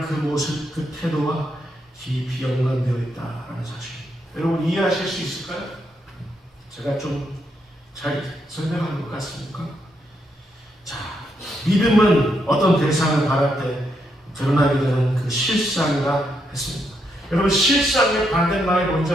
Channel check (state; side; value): normal; both; correlation 0.79